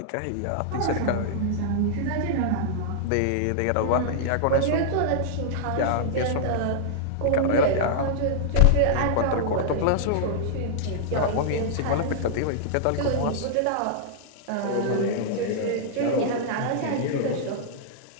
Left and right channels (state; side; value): different; both; correlation -0.01